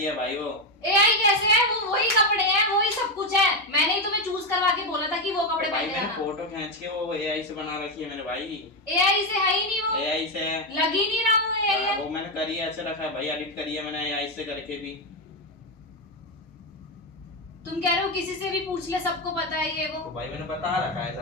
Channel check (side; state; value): both; normal; correlation 0.09